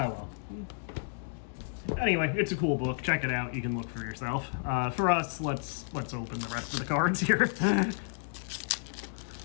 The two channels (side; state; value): right; silent; digital silence